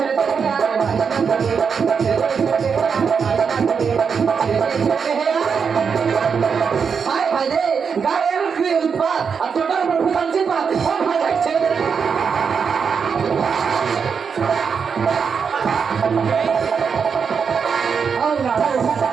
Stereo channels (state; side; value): quieter; left; 6.2 dB